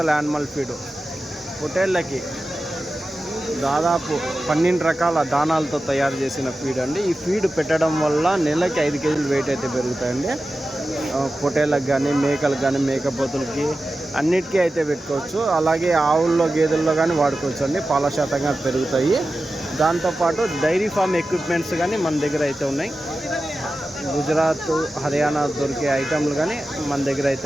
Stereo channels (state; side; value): normal; both; correlation 0.93